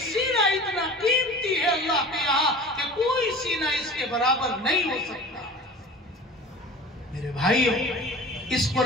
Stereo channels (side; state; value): both; normal; correlation 0.40